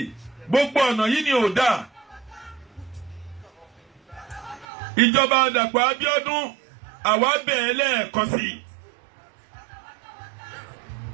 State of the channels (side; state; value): left; drops out; at 4.7 s